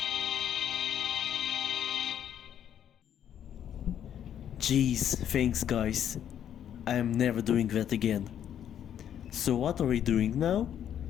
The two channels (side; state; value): right; quieter; 9.7 dB